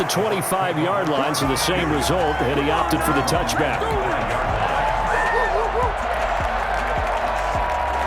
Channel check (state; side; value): identical; both; correlation 1.00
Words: 25-yard line, so the same result, and he opted for the touchback.